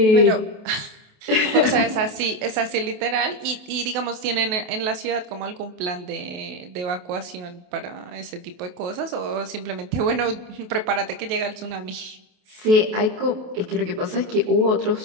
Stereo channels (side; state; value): left; late; 28 ms